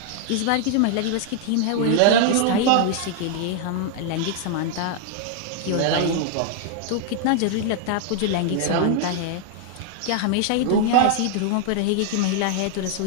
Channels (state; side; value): different; both; correlation 0.00